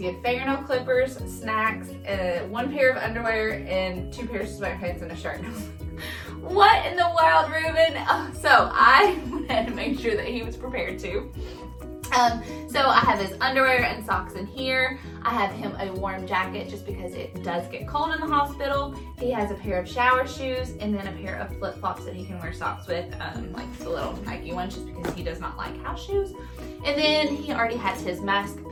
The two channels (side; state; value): both; identical; correlation 1.00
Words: had fingernail clippers, snacks, 1 pair of underwear, and 2 pairs of sweatpants and a shirt. What in the world, Ruben? So I had to make sure that he was prepared too. So I have his underwear and socks in here. I have him a warm jacket just because it does get cold in the hospital. He has a pair of shower shoes and then a pair of flip-flops that he can wear socks with, like the little Nike ones, just because he does not like house shoes. And then he already has his mask